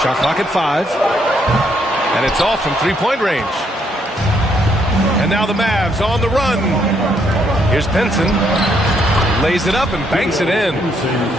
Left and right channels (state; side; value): normal; both; correlation 0.72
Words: Shot clock at 5. And it's off from three-point range. And now the Mavs on the run. Here's Pinson. Lays it up and banks it in.